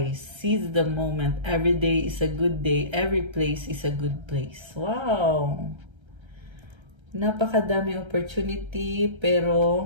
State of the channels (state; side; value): late; left; 1.3 ms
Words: Seize the moment. Every day is a good day. Every place is a good place. Wow! Napakadami opportunity,